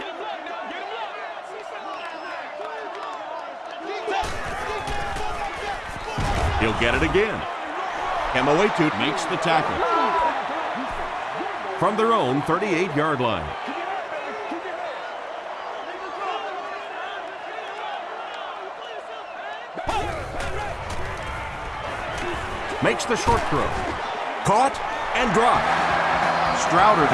He'll get it again. Emoetu Makes the tackle. from their own 38-yard line. Makes the short throw. Caught and dropped. Strouder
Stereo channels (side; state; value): both; identical; correlation 1.00